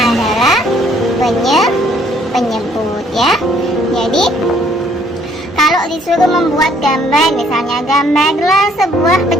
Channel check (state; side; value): normal; both; correlation 0.63